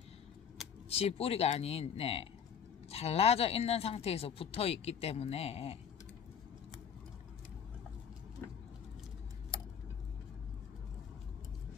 지 뿌리가 아닌 잘라져 있는 상태에서 붙어 있기 때문에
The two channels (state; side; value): quieter; right; 7.7 dB